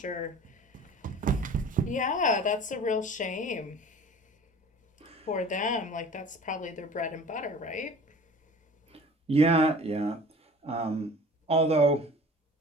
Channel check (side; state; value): both; normal; correlation 0.44